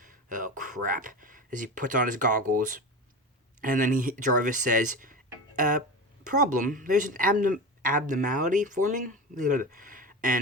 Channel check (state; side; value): normal; both; correlation 0.27